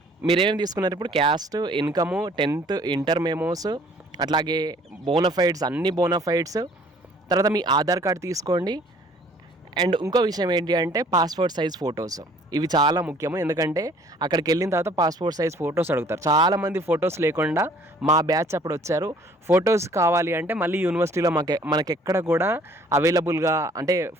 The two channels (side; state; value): both; normal; correlation 0.56